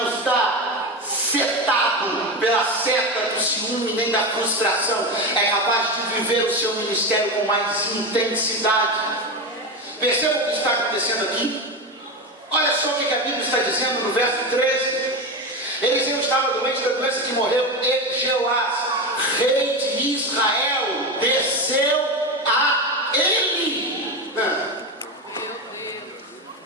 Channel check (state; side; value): normal; both; correlation 0.18